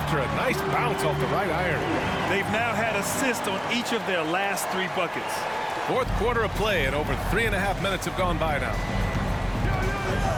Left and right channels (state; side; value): identical; both; correlation 1.00